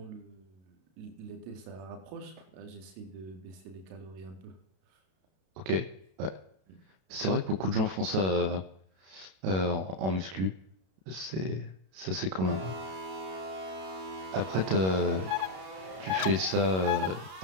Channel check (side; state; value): left; late; 32 ms